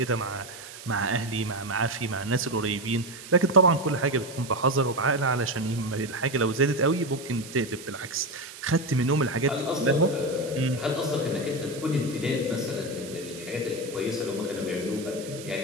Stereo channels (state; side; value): noise; right; hiss, 15 dB below the sound